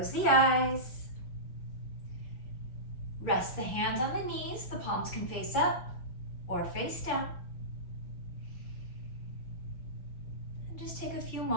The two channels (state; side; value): late; right; 5.9 ms